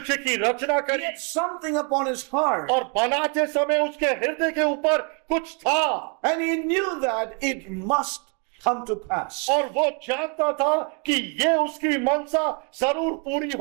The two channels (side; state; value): left; quieter; 36.3 dB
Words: की रचना He करी had something upon His heart, और बनाते समय उसके हृदय के ऊपर कुछ था and He knew that it must come to pass. और वो जानता था कि ये उसकी मनसा जरूर पूरी